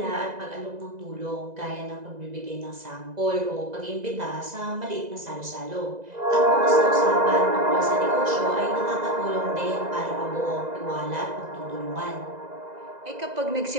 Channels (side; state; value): left; late; 2.0 ms